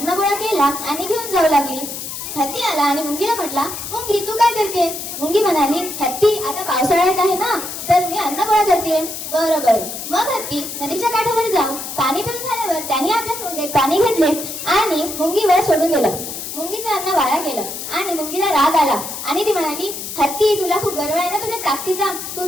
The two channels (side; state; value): left; noise; hiss, 7 dB below the sound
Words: गोळा केला आणि घेऊन जाऊ लागली. हत्ती आला आणि मुंगीला म्हटला, मुंगी तू काय करतेस? मुंगी म्हणाली, हत्ती आता पावसाळ्यात आहे ना, तर मी अन्न गोळा करते. बरं बरं. मग हत्ती नदीच्या काठावर जाऊन पाणी पिऊन झाल्यावर त्याने आपल्या सोंडेत पाणी घेतले आणि मुंगीवर सोडून दिलं. मुंगीचं अन्न वाया गेलं आणि मुंगीला राग आला आणि ती म्हणाली, हत्ती तुला खूप गर्व आहे ना तुझ्या ताकदीचा, तू